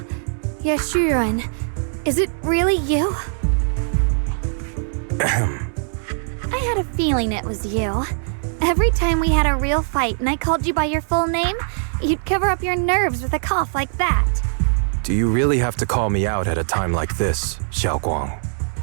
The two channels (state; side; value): silent; left; digital silence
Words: Yeshurun, is it really you? I had a feeling it was you. Every time we had a real fight and I called you by your full name, you'd cover up your nerves with a cough like that. Do you really have to call me out at a time like this, Xiaoguang?